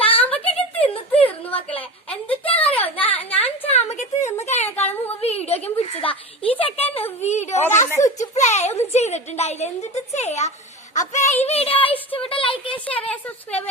തിന്ന് തീർന്നു മക്കളെ. എന്തിട്ടാന്നറിയോ, ഞാൻ ചാമ്പക്ക തിന്ന് കഴിഞ്ഞേക്കാളും മുമ്പ് വീഡിയോ ഒക്കെ പിടിച്ചതാ. ഈ ചെക്കൻ വീഡിയോ സ്വിച്ച് പ്ലേ ഒന്നും ചെയ്തിട്ടുണ്ടായില്ല. എന്തിട്ട് ചെയ്യാ. അപ്പൊ ഈ വീഡിയോ ഇഷ്ടപ്പെട്ട ലൈക്ക് ചെയ്യുക, ഷെയർ ചെയ്യുക, സബ്സ്ക്രൈബ്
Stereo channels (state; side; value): normal; both; correlation 0.29